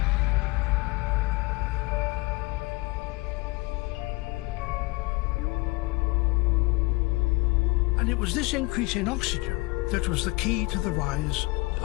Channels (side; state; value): right; quieter; 24.3 dB